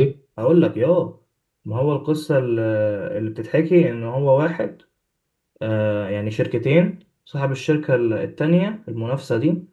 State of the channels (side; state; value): both; identical; correlation 1.00